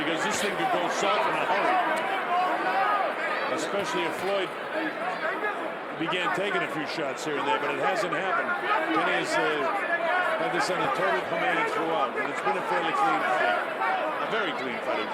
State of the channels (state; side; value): identical; both; correlation 1.00